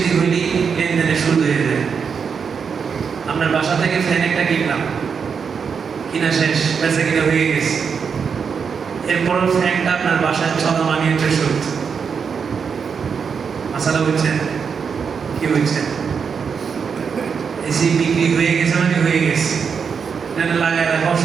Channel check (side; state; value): left; quieter; 6.2 dB